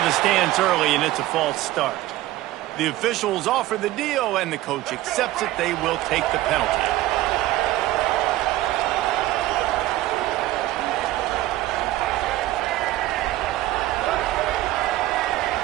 the stands early, and it's a false start. The officials offer the deal, and the coach accepts it. They will take the penalty.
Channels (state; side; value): quieter; left; 16.1 dB